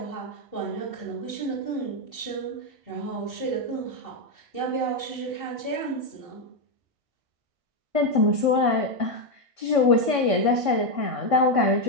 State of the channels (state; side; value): late; left; 1.6 ms